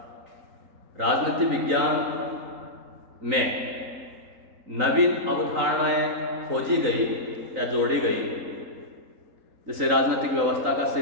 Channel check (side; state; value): left; late; 3.9 ms